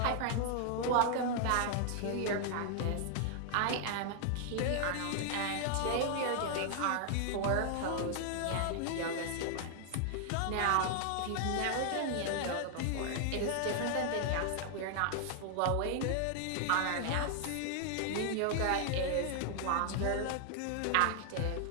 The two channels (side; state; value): both; different; correlation 0.00